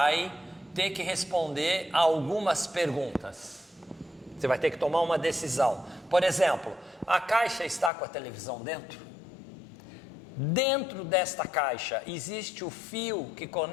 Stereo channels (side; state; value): right; drops out; at 7.9 s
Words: ter que responder a algumas perguntas. Você vai ter que tomar uma decisão. Por exemplo, a caixa está com a televisão dentro? Dentro desta caixa existe o fio que